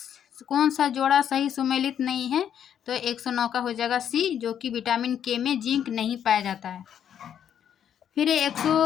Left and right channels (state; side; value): quieter; right; 9.2 dB